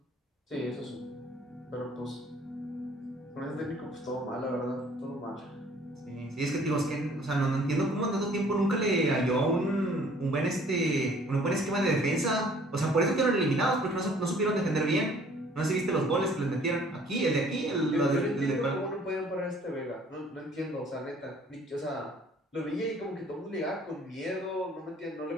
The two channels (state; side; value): normal; both; correlation 0.56